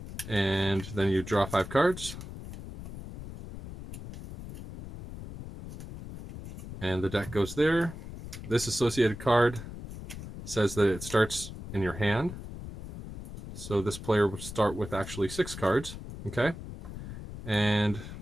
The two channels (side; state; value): left; noise; rumble, 11 dB below the sound